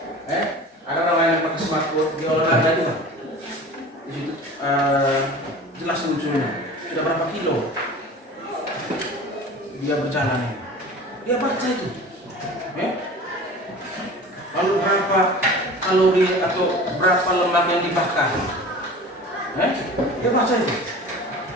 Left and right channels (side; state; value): both; normal; correlation 0.39